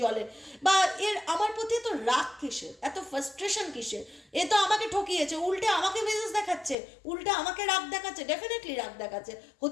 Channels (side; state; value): right; drops out; at 6.8 s